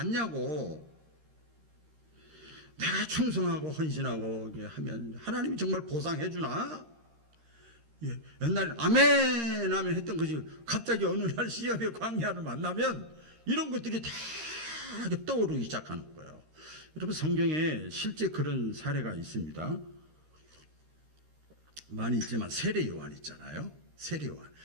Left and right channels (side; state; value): left; late; 13 ms